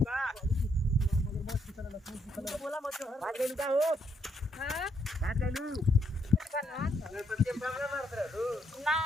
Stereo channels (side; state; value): both; normal; correlation 0.75